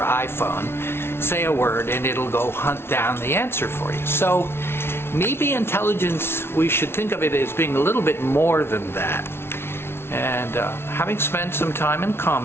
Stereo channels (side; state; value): right; late; 0.12 ms